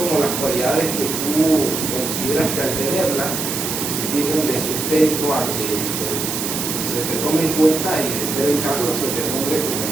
las cualidades que tú consideras que al tenerlas sirven de sustento a que se te tome en cuenta y, de ser el caso, se te nombre como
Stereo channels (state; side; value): noise; right; hiss, 3 dB below the sound